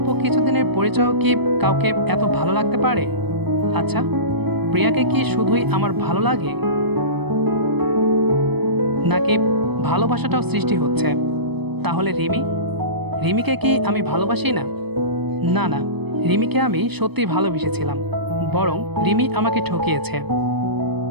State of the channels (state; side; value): late; left; 0.98 ms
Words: কিছুদিনের পরিচয়ও কি কাউকে এত ভালো লাগতে পারে? আচ্ছা, প্রিয়াকে কি শুধুই আমার ভালো লাগে, নাকি ভালোবাসাটাও সৃষ্টি হচ্ছে? তাহলে রিমিকে কি আমি ভালোবাসি না? না না, রিমিকে আমি সত্যি ভালোবেসেছিলাম, বরং রিমি আমাকে ঠকিয়েছে।